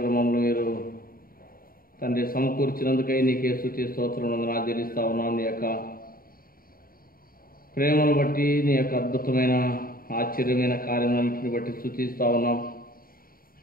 మమ్మల్ని మీరు తండ్రి సమకూర్చినందుకై నీకే స్తుతి స్తోత్రం వందనాలు చెల్లిస్తూ ఉన్నాం. నీ యొక్క ప్రేమను బట్టి, నీ యొక్క అద్భుతమైన ఆశ్చర్యమైన కార్యములన్నింటిని బట్టి స్తుతిస్తూ ఉన్నాం.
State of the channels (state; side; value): late; right; 0.42 ms